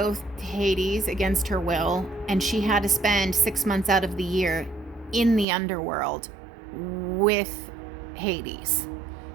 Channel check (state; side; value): drops out; left; at 5.5 s